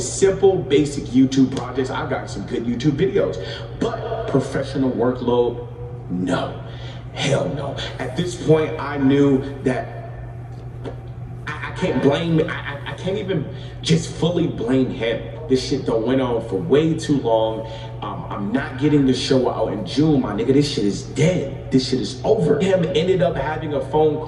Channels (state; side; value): identical; both; correlation 1.00